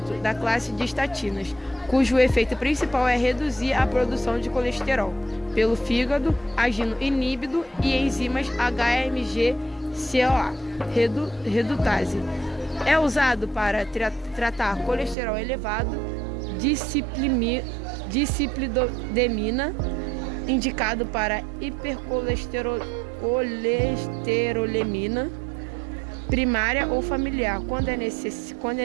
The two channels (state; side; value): drops out; left; at 15.2 s